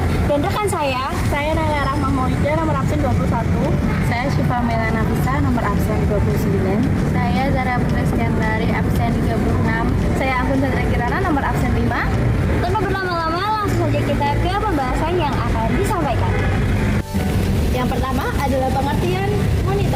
dan rekan saya Nala Rahmah Maulida nomor absen 21. Saya Syifa Melana Nafisa nomor absen 29. Saya Zara Putri Skandari absen 36. Saya Anggun Chandra Kirana nomor absen 5. Tanpa berlama-lama, langsung saja kita ke pembahasan yang akan disampaikan. Yang pertama adalah pengertian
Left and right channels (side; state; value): both; identical; correlation 1.00